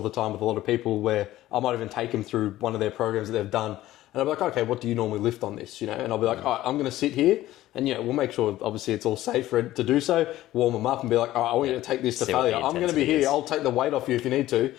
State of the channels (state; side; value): quieter; right; 15.1 dB